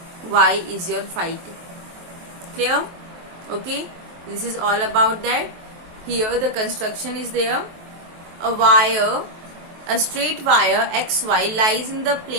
Y is your phi 2. Clear? Okay, this is all about that. Here the construction is there. A wire, a straight wire XY lies in the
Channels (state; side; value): late; left; 23 ms